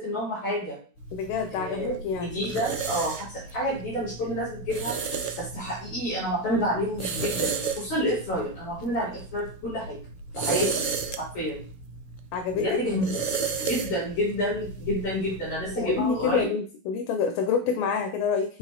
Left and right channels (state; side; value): late; right; 16 ms